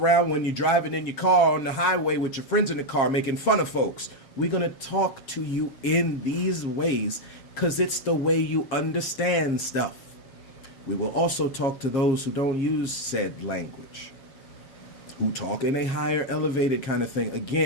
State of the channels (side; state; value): right; late; 7.4 ms